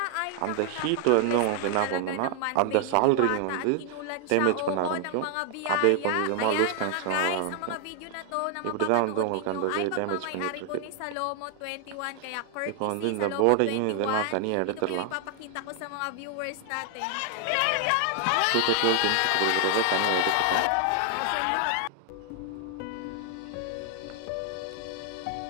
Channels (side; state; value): both; different; correlation 0.00